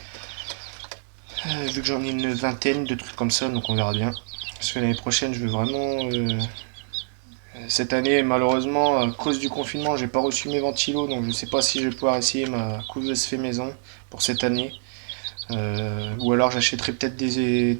Vu que j'en ai une vingtaine de trucs comme ça, donc on verra bien. Parce que l'année prochaine, je veux vraiment. Cette année, malheureusement, à cause du confinement, j'ai pas reçu mes ventilos, donc je sais pas si je vais pouvoir essayer ma couveuse fait maison pour cette année. Ou alors j'achèterai peut-être des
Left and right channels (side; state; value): left; silent; 62 dB below the other